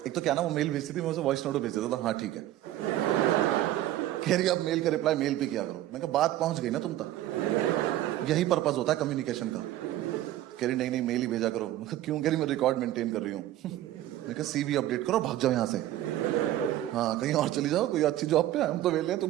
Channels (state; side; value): quieter; left; 14.0 dB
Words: एक तो क्या ना वो मेल भेजती थी, मैं उसे वॉइस नोट भेज देता था, हाँ ठीक है। कह रही अब मेल का रिप्लाई मेल पे किया करो। मैं कहा बात पहुंच गई ना तुम तक, यही पर्पस होता है कम्युनिकेशन का। कह रही नहीं नहीं मेल ही भेजा करो। मैं कहा क्यों? कह रही मैं रिकॉर्ड मेंटेन कर रही हूँ। मैं कहा सीवी अपडेट करो, भाग जाओ यहाँ से, हाँ कहीं और चली जाओ, कोई अच्छी जॉब पे, हम तो वेले हैं,